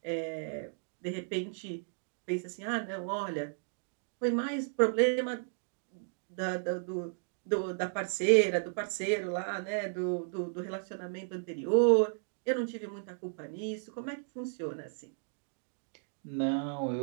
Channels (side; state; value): left; silent; digital silence